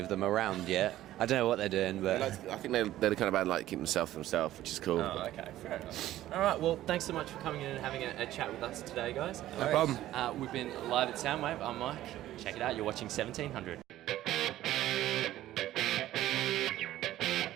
them around yet. I don't know what they're doing, but I think they're the kind of band like keep themselves to themselves, which is cool. Oh, okay, fair enough. All right, well, thanks so much for coming in and having a chat with us today, guys. No problem. We've been live at Soundwave. I'm Mike. Check it out. You're watching 1700.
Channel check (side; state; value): left; quieter; 14.1 dB